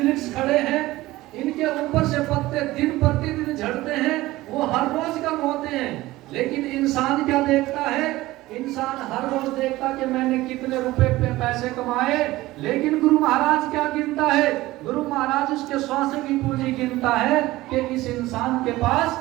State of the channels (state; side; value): quieter; left; 17.9 dB